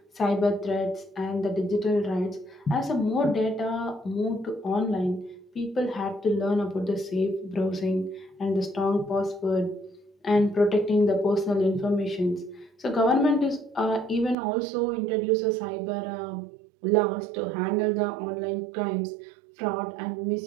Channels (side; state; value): left; drops out; at 14.4 s